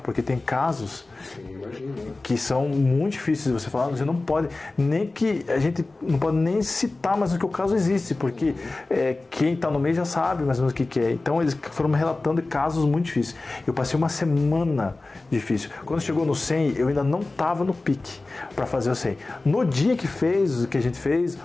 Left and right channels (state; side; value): quieter; right; 3.2 dB